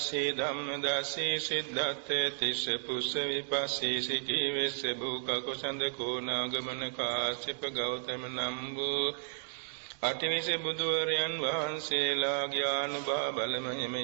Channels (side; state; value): left; silent; digital silence